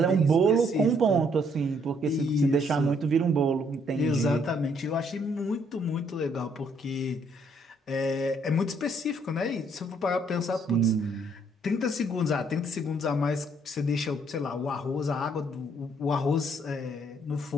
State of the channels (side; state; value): both; normal; correlation 0.68